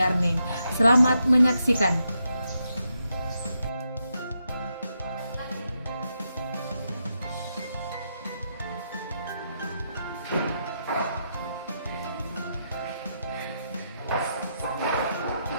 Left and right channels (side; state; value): both; inverted; correlation -0.83